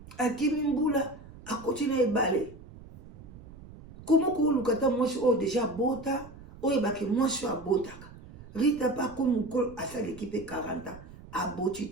akimi mbula akoti na ebale komo koluka ta mwasi oyo deja abota oyebaki mwasi oyo abotaka Rita pa komi mokolo asaleki mpe 40 ans aboti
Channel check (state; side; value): noise; right; rumble, 18 dB below the sound